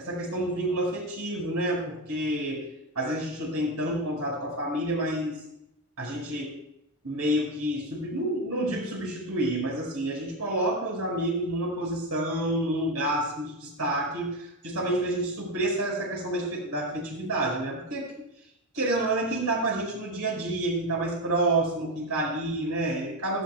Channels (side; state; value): both; normal; correlation 0.13